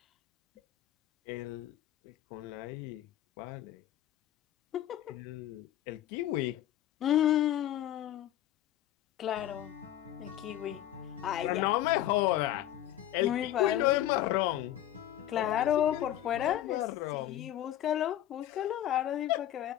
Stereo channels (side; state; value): right; quieter; 12.6 dB